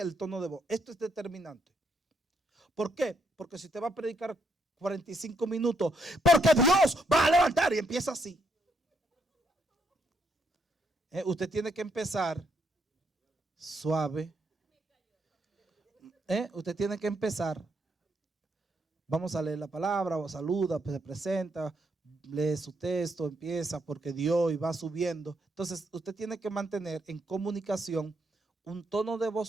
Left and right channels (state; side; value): normal; both; correlation 0.76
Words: el tono de voz. Esto es determinante. ¿Por qué? Porque si te va a predicar 45 minutos, porque Dios va a levantar y empieza así. Usted tiene que empezar suave. Usted tiene que empezar. Vamos a leer la palabra, o saluda, se presenta, lee su texto, empieza porque Dios y va subiendo. Entonces usted tiene que mantener en comunicación un tono de voz